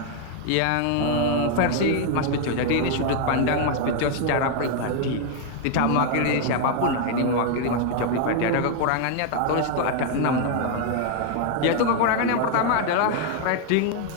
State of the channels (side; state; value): both; different; correlation 0.00